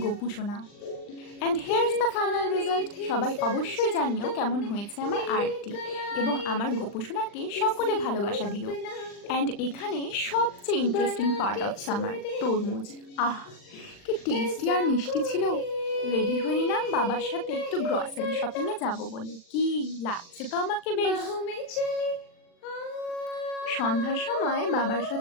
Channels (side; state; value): right; late; 40 ms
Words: গপু সোনা। And here's the final result. সবাই অবশ্যই জানিও কেমন হয়েছে আমার আর্টটি, এবং আমার গোপুসোনাকে সকলে ভালোবাসা দিও। অ্যান্ড এখানে সবচেয়ে ইন্টারেস্টিং পার্ট অফ সামার, তরমুজ। আহ, কি টেস্টি আর মিষ্টি ছিল। রেডি হয়ে নিলাম বাবার সাথে একটু গ্রসারি শপিংয়ে যাব বলে। কি লাগছে তো আমাকে বেশ। সন্ধ্যার সময় বাবার